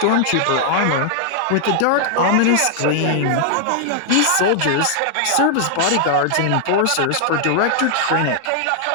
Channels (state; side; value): different; both; correlation 0.00